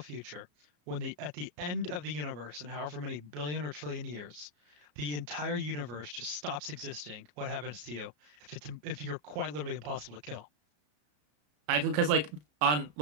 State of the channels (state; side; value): late; left; 34 ms